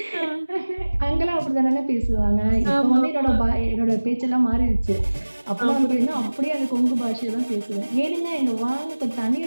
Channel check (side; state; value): both; inverted; correlation -1.00